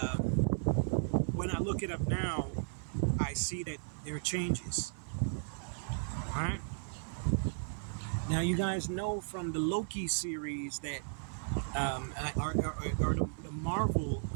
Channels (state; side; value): silent; left; 54 dB below the other